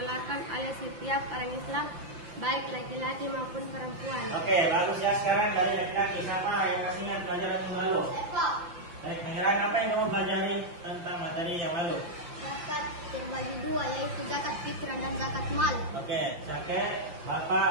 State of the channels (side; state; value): left; late; 5.8 ms